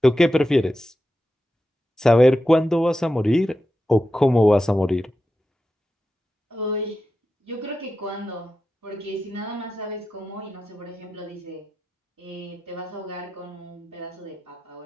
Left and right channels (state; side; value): normal; both; correlation 0.91